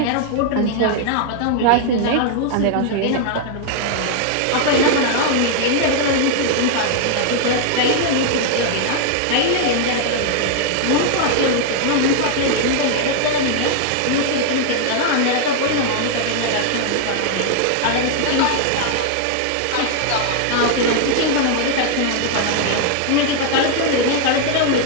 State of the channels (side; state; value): both; different; correlation 0.00